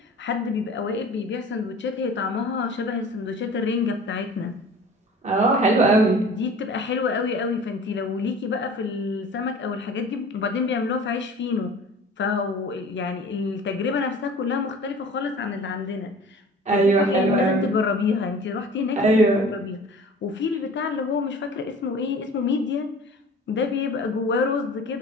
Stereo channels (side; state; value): both; normal; correlation 0.43